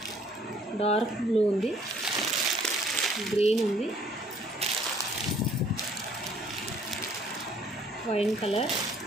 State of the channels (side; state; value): both; normal; correlation 0.60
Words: డార్క్ బ్లూ ఉంది, గ్రీన్ ఉంది, wine colour,